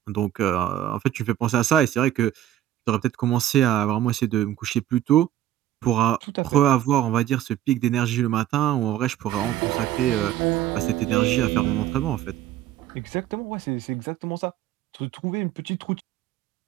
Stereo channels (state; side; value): quieter; left; 12.4 dB